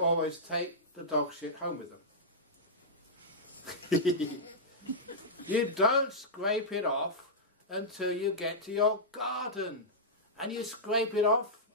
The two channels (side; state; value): both; normal; correlation -0.11